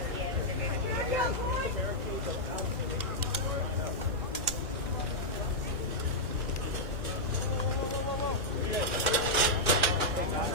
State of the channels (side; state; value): both; normal; correlation -0.06